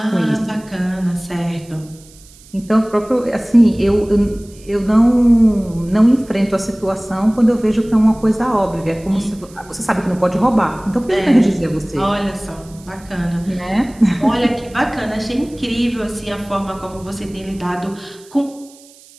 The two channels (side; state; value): right; noise; hiss, 24 dB below the sound